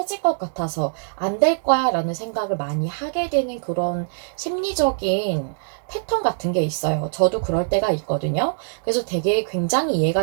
것 같아서 안 될 거야 라는 생각을 많이 하게 되는 그런 심리적인 패턴 같은 게 있어요. 저도 그럴 때가 있거든요. 그래서 되게 굉장히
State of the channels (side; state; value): left; silent; digital silence